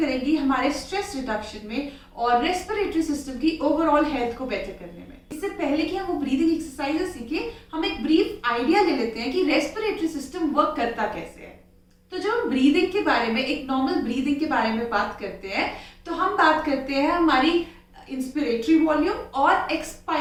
हमारे स्ट्रेस रिडक्शन में और रेस्पिरेटरी सिस्टम की ओवरऑल हेल्थ को बेटर करने में। इससे पहले कि हम वो ब्रीदिंग एक्सरसाइजेस सीखें, हम एक ब्रीफ आइडिया ले लेते हैं कि रेस्पिरेटरी सिस्टम वर्क करता कैसे है। तो जब हम ब्रीदिंग के बारे में, एक नॉर्मल ब्रीदिंग के बारे में बात करते हैं, तो हम बात करते हैं हमारी इंस्पिरेटरी वॉल्यूम और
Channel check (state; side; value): identical; both; correlation 1.00